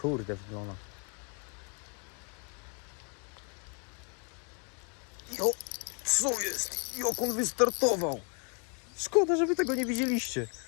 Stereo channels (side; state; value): right; quieter; 38.0 dB